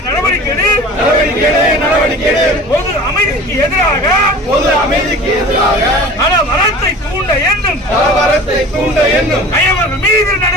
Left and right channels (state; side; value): normal; both; correlation 0.40